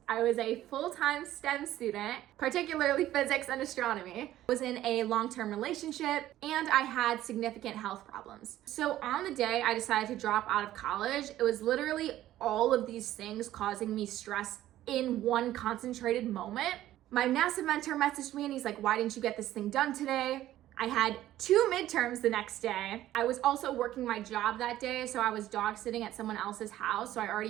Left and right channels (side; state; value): left; quieter; 13.7 dB